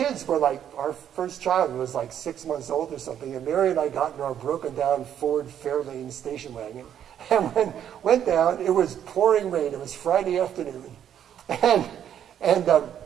were like, our first child was like 6 months old or something, and Mary and I got in our broken down Ford Fairlane station wagon, and went down. It was pouring rain. It was Friday afternoon. And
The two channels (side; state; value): left; quieter; 9.7 dB